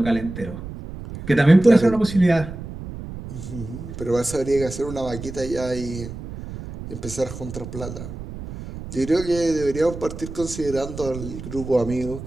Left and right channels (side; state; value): right; noise; rumble, 11 dB below the sound